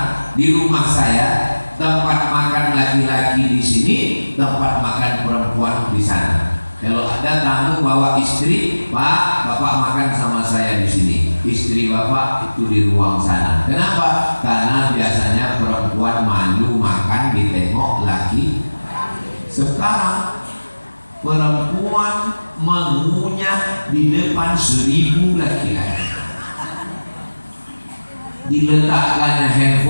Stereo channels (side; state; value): both; inverted; correlation -1.00